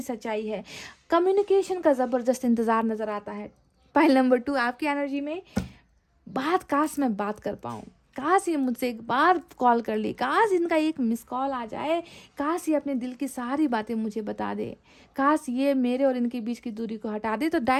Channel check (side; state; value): both; identical; correlation 1.00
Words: सच्चाई है। कम्युनिकेशन का ज़बरदस्त इंतज़ार नज़र आता है। पॉइंट नंबर 2, आपकी एनर्जी में काश मैं बात कर पाऊँ, काश ये मुझसे एक बार कॉल कर ले, काश इनका एक मिस कॉल आ जाए, काश ये अपने दिल की सारी बातें मुझे बता दे, काश ये मेरे और इनके बीच की दूरी को हटा दे। तो